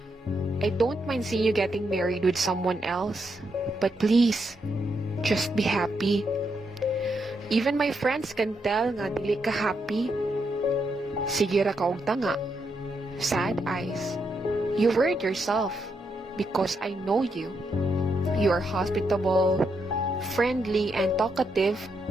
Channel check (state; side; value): normal; both; correlation 0.81